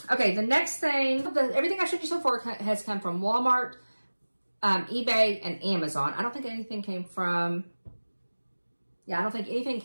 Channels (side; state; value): both; inverted; correlation -1.00